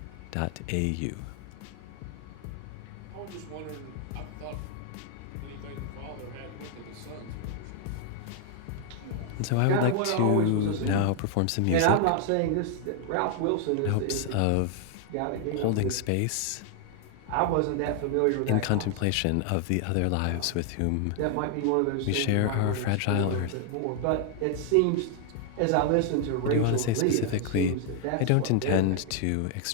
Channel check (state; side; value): different; both; correlation 0.00